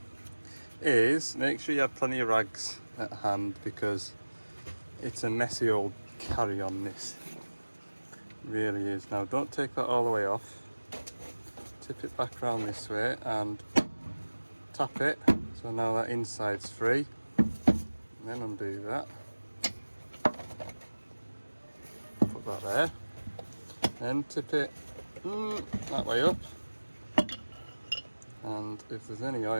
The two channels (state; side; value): inverted; both; correlation -1.00